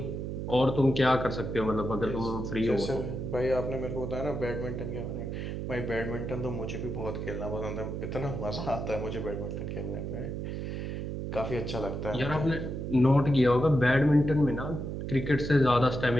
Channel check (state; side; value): noise; right; hum, 4 dB below the sound